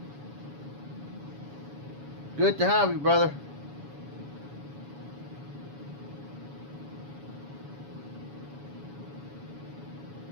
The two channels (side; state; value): left; late; 7.1 ms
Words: Good to have you, brother.